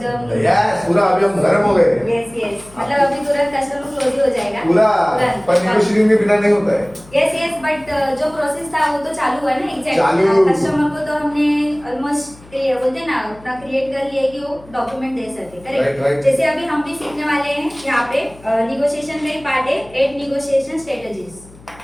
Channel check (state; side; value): noise; left; hum, 23 dB below the sound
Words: यस पूरा अभी हम गर्म हो गए यस मतलब अभी तुरंत कस्टमर क्लोज ही हो जाएगा पूरा तुरंत। पर नेगोशिएटिंग के बिना नहीं होता है यस बट जो प्रोसेस था वो तो चालू हुआ ना एग्जैक्ट। चालू। कस्टमर को तो हमने ऑलमोस्ट बोलते हैं ना उतना क्रिएट कर लिया है कि वो डॉक्यूमेंट दे सके Right. करेक्ट। जैसे अभी हम भी सीखने वाले हैं यहाँ पे निगोशिएशन का ही पार्ट है 8 निगोशिएशन स्ट्रेटजीज,